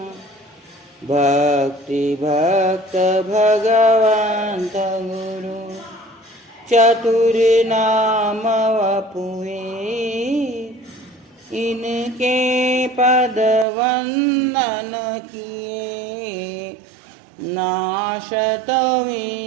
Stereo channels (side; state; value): left; drops out; at 13.7 s